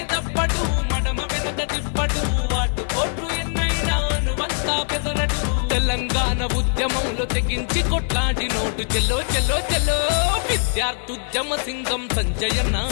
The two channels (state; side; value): silent; right; 61 dB below the other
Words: తప్పడు మడమ వెనక తిప్పడు అటు పోట్లు ఎన్నైనా నువ్వంతా బెదరడు తెలంగాణ ఉద్యమంలో తెగించి కొట్లాడి నోటు చెల్లో చెల్లో చెల్లో విద్యార్థుద్యమ సింగం సంజయన్న